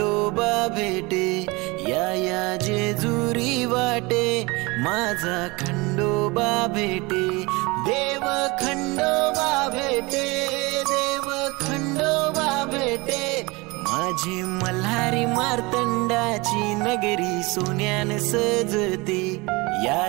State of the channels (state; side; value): quieter; left; 24.9 dB